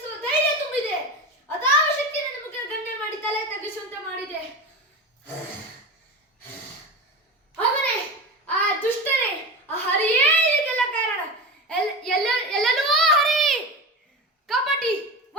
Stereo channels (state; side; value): normal; both; correlation 0.26